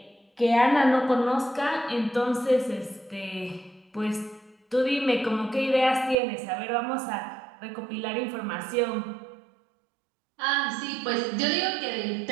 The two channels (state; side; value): drops out; left; at 6.2 s